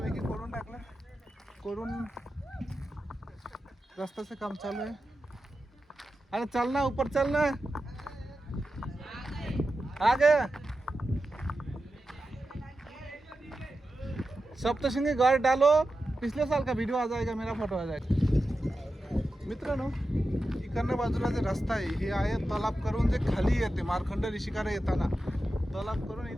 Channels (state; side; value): normal; both; correlation 0.91